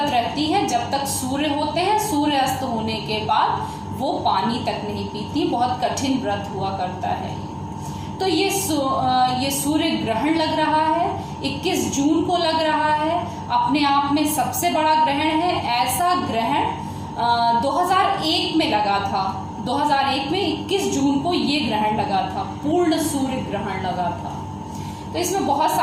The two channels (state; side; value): identical; both; correlation 1.00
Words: रहती है जब तक सूर्य होते हैं। सूर्य अस्त होने के बाद वो पानी तक नहीं पीती। बहुत कठिन व्रत हुआ करता है। तो ये सूर्य ग्रहण लग रहा है, 21 जून को लग रहा है। अपने आप में सबसे बड़ा ग्रहण है। ऐसा ग्रहण 2001 में लगा था। 2001 में 21 जून को ये ग्रहण लगा था, पूर्ण सूर्य ग्रहण लगा था। तो इसमें बहुत